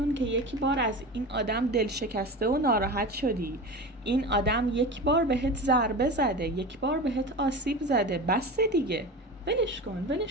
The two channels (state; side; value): normal; both; correlation 0.29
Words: که یک بار از این آدم دل شکسته و ناراحت شدی. این آدم یک بار بهت ضربه زده، یک بار بهت آسیب زده، بس دیگه. ولش کن،